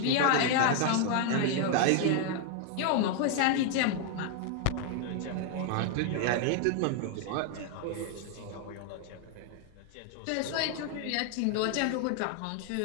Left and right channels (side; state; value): both; different; correlation 0.00